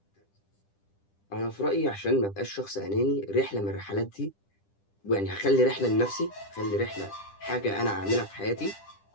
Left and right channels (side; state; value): right; late; 10 ms